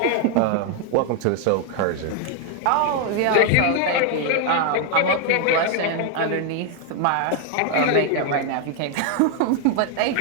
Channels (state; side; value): different; both; correlation 0.00